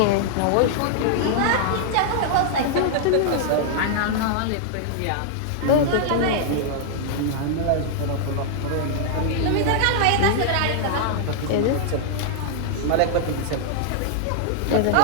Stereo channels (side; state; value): both; different; correlation -0.01